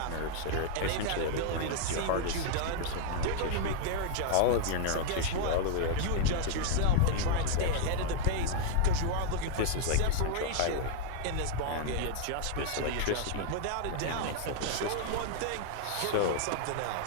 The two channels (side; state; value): both; different; correlation 0.00